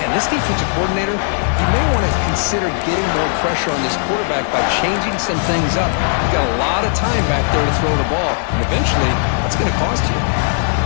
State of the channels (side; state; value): right; silent; 57 dB below the other